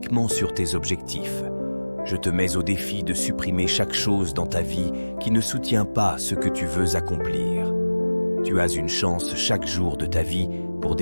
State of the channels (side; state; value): both; inverted; correlation -1.00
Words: sur tes objectifs. Je te mets au défi de supprimer chaque chose dans ta vie qui ne soutient pas ce que tu veux accomplir. Tu as une chance chaque jour de ta vie pour